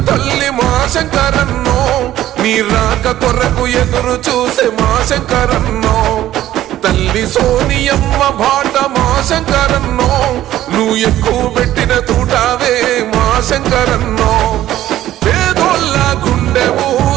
తల్లి మా శంకరన్నో నీ రాక కొరకు ఎదురు చూసే మా శంకరన్నో తల్లి సోనియమ్మ బాట మా శంకరన్నో నువ్వు ఎక్కువ పెట్టిన తూటావే మా శంకరన్నో పేదోళ్ళ గుండెవు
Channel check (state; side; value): quieter; left; 13.5 dB